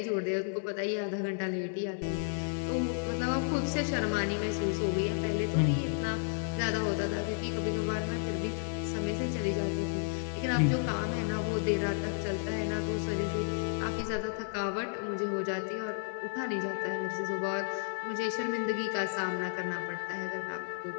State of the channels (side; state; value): right; silent; 56 dB below the other